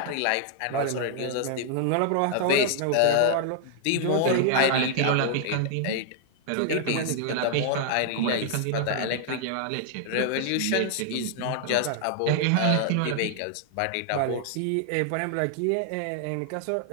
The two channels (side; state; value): both; different; correlation -0.01